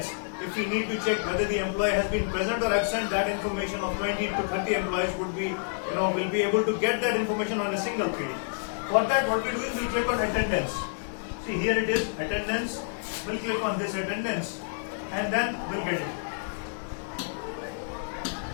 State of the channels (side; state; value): right; silent; digital silence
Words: if we need to check whether the employee has been present or absent, that information of 20 to 30 employees would be, will be able to get that information on a single page. For that, what we do is we click on attendance. See, here it is, attendance. We'll click on this attendance and then we'll get it.